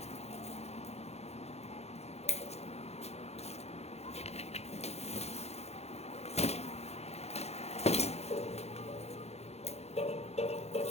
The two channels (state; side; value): late; right; 0.31 ms